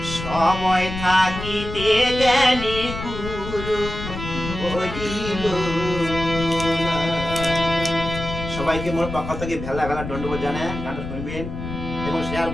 সময় থাকিতে কেনে গুরু বলিল না। সবাইকে মোর পক্ষ থেকে ভেলা ভেলা দণ্ডবোধ জানায় গানটা শুনবেন এবং শেয়ার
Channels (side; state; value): left; noise; rumble, 8 dB below the sound